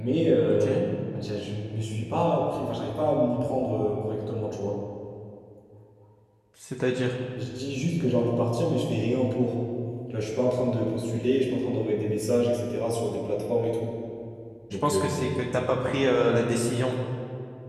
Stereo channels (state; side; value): identical; both; correlation 1.00